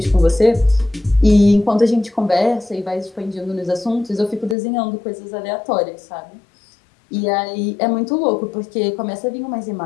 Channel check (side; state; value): right; drops out; at 4.5 s